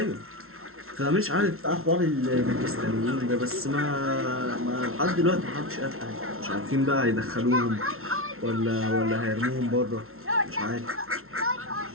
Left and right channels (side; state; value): left; late; 0.62 ms